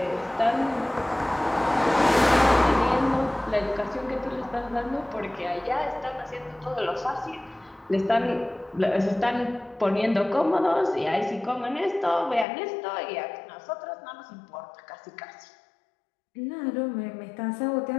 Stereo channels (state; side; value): drops out; right; at 12.5 s